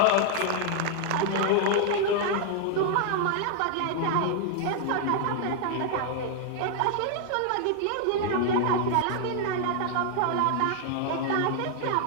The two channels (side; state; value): both; different; correlation 0.00